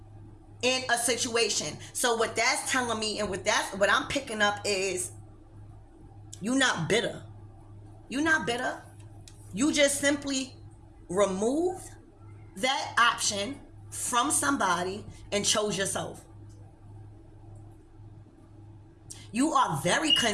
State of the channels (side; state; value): both; identical; correlation 1.00